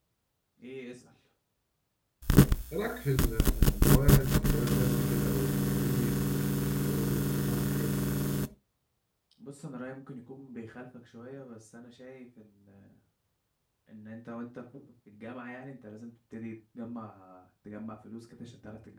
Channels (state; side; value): identical; both; correlation 1.00